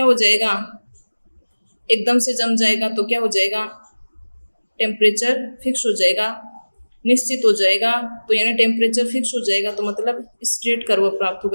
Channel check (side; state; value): both; inverted; correlation -1.00